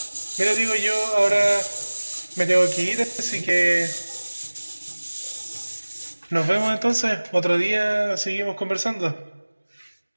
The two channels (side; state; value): both; inverted; correlation -1.00